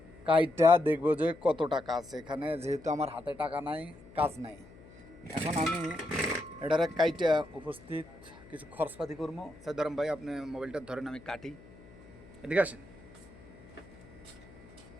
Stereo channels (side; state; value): left; noise; hum, 21 dB below the sound